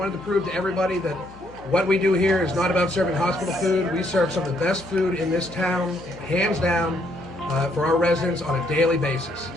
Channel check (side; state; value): left; noise; hum, 21 dB below the sound